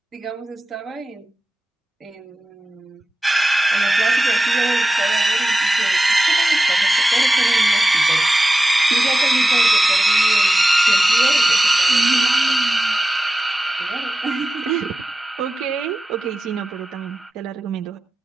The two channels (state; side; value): normal; both; correlation 0.93